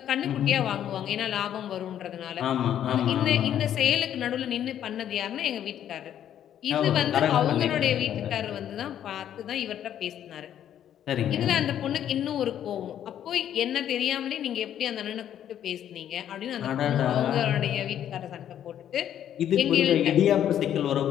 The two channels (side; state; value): right; quieter; 10.4 dB